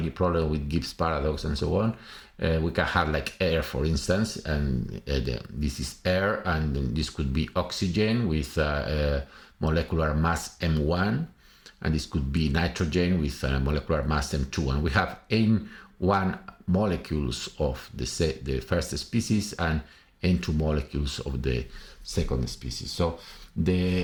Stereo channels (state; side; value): identical; both; correlation 1.00